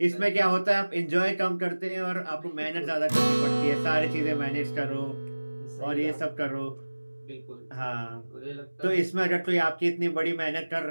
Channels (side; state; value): both; inverted; correlation -1.00